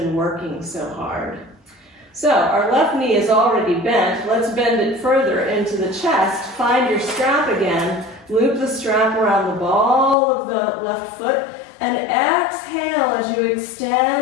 working so hard. So our left knee is already bent. Let's bend it further into the chest. Find your strap again. Loop the strap around the ball of the left foot and exhale as you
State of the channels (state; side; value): drops out; right; at 10.2 s